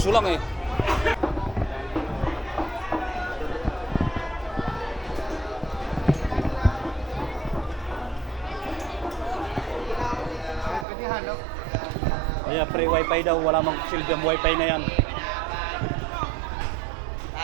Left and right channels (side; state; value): left; drops out; at 10.9 s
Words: lang eh. Kaya free wifi daw, wala mang silbi ang wifi na yan.